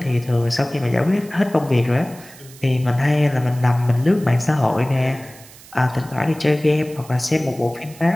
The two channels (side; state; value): right; noise; hiss, 21 dB below the sound